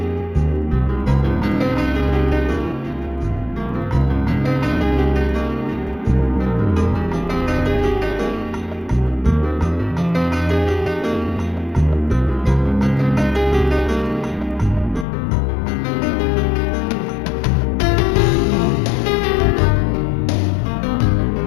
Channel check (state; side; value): drops out; right; at 15.1 s